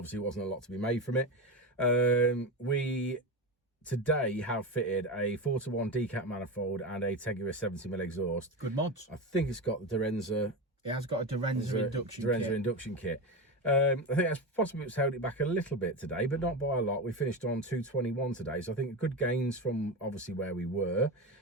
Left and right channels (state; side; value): normal; both; correlation 0.20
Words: it wasn't a lot to be made from it. We today have fitted a 4-to-1 decap manifold and a Teguis 70mm exhaust. Good mods. I think it's got the Dynodaze. It has got a Dynodaze induction kit. I think that's possibly what's held it back a little bit today, but not by a lot. We finished on 221 today, so I think good gains from obviously where we were,